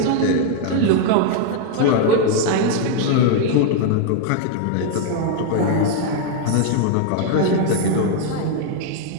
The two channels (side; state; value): both; different; correlation 0.00